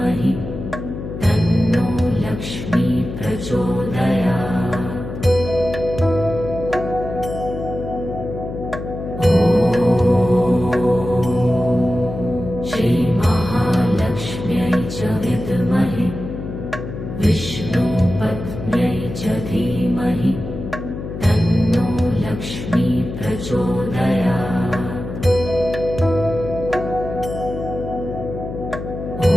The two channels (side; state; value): left; noise; hum, 8 dB below the sound